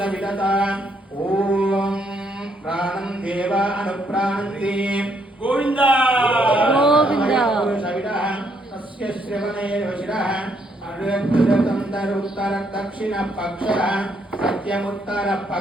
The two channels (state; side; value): normal; both; correlation 0.72